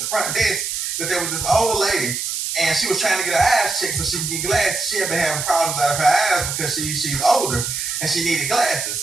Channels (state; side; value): noise; right; hiss, 3 dB below the sound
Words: front desk, that there was this old lady, and she was trying to get her eyes checked so she could get glasses. She had been having problems out of her eyes because she's older and she needed